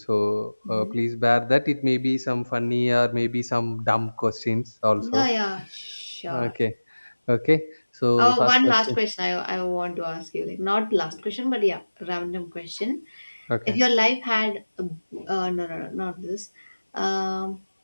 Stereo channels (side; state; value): both; inverted; correlation -1.00